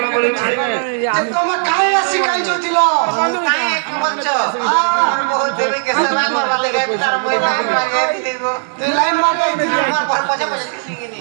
বলছে যে তোমরা কাহে আসি কাই জছিল কাহে কি বলছো আমার বহুত দেবী কে সেবা করবা লাগে তার মই লাইন মারিয়ে দিব তুই লাইন মারাই দিবি আমার ঘর পচা পচা শিখিনি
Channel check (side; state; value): left; silent; 62 dB below the other